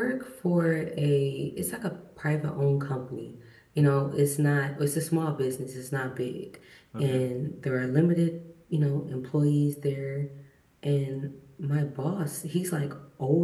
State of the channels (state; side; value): identical; both; correlation 1.00